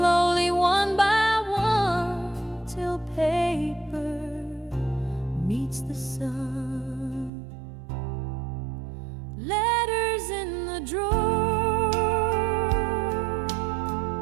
one by one till paper meets the sun. Letters in the drawer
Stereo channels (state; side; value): drops out; left; at 7.3 s